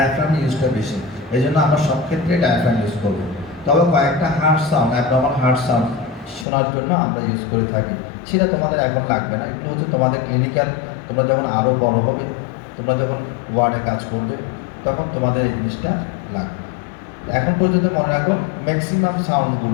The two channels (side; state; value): right; drops out; at 6.5 s